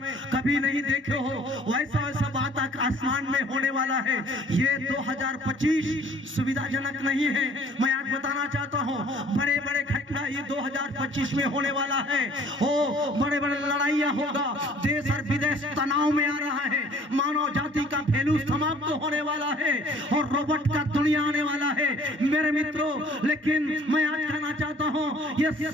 कभी नहीं देखे हो वैसा वैसा बात आसमान में होने वाला है। ये 2025 सुविधाजनक नहीं है। मैं आज बताना चाहता हूँ, बड़े बड़े घटना ये 2025 में होने वाला है। ओ बड़े बड़े लड़ाइयाँ होगा, देश और विदेश तनाव में आ रहा है, मानव जाति का वैल्यू समाप्त होने वाला है, और रोबोट का दुनिया आने वाला है मेरे मित्रों। लेकिन मैं आज कहना चाहता हूँ, ये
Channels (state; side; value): normal; both; correlation 0.54